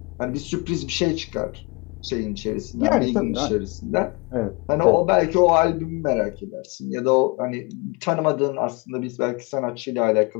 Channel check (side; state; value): right; quieter; 28.0 dB